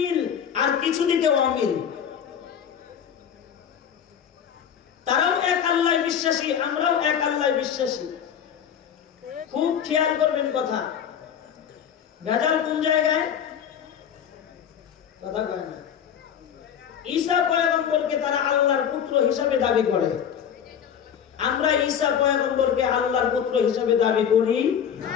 আর কিছু দিকে অমিল। তারাও এক আল্লাহ বিশ্বাসী, আমরাও এক আল্লাহ বিশ্বাসী। খুব খেয়াল করবেন কথা। ভেজাল কোন জায়গায়? কথা কয় না। ঈসা পয়গম্বরকে তারা আল্লাহর পুত্র হিসেবে দাবি করে, আমরা ঈসা পয়গম্বরকে আল্লাহর পুত্র হিসেবে দাবি করি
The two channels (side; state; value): right; quieter; 8.5 dB